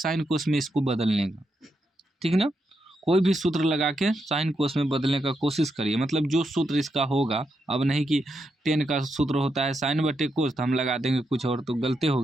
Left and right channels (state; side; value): normal; both; correlation 0.83